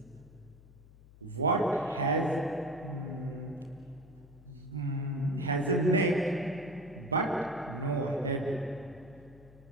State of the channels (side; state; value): left; noise; hum, 22 dB below the sound